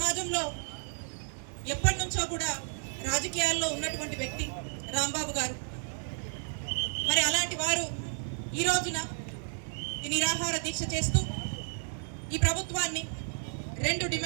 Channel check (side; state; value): left; silent; 56 dB below the other